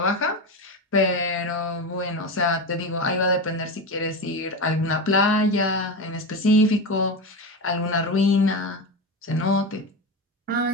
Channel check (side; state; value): both; normal; correlation 0.20